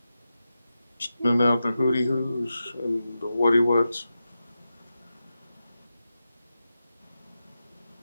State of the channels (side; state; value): both; inverted; correlation -0.91